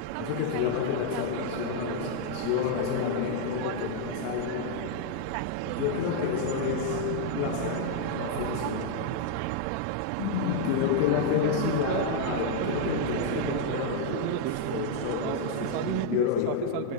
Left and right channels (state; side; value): different; both; correlation 0.00